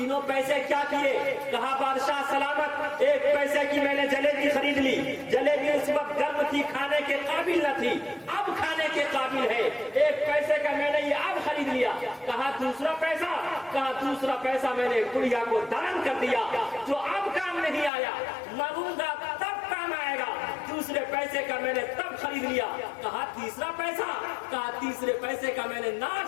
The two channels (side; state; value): right; drops out; at 17.9 s